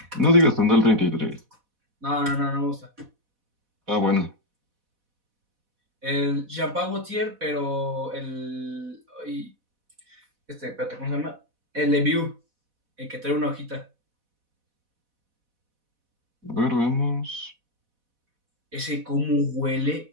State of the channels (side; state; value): left; late; 4.1 ms